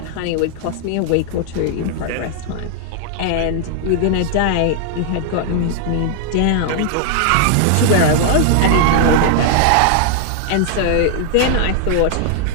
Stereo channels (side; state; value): both; different; correlation 0.00